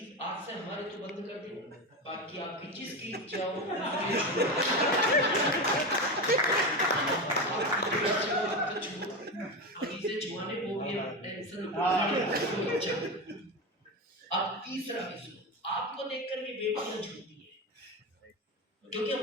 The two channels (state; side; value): normal; both; correlation 0.19